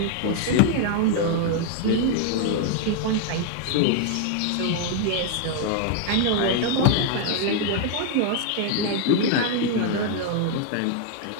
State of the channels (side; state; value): both; different; correlation 0.00